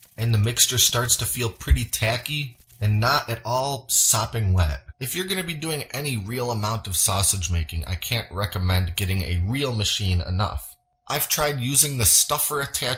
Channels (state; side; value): identical; both; correlation 1.00